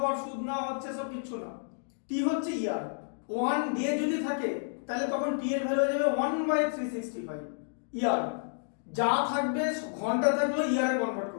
সুদ নেওয়া হচ্ছে সব কিছু না, টি হচ্ছে ইয়ার। 1 ডে যদি থাকে তাহলে তখন টি এর ভ্যালু হয়ে যাবে 1/365 ইয়ার। যা থাকবে ঘন্টা থাকলেও ইয়ারে কনভার্ট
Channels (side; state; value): right; silent; digital silence